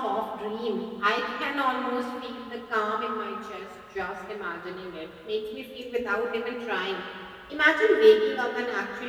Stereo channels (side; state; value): both; identical; correlation 1.00